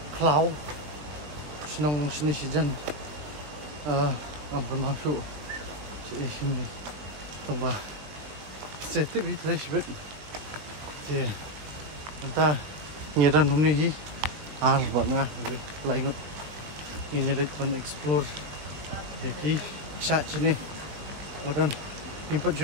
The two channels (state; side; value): late; left; 20 ms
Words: cloud. Senang sini sejan. Ampun masuk. Sini. Tunggu. Setip di trash bed. Thì chúng ta nhìn ra hôm nay vẫn nga lại ngột nhìn lịch vẫn explore thì cái sạch trên này một lần input